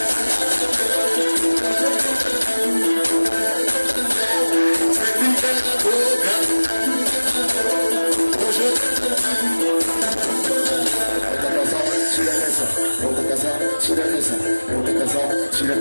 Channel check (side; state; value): both; inverted; correlation -1.00